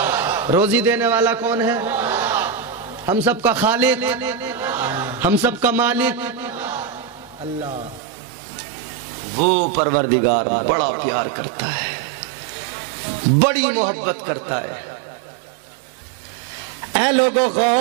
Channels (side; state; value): left; drops out; at 8.0 s